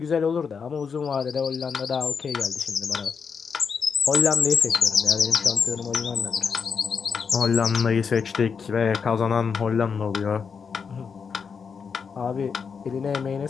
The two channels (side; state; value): right; quieter; 6.1 dB